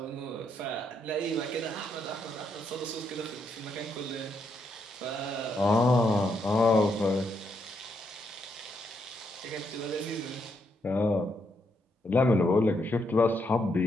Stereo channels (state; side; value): normal; both; correlation 0.77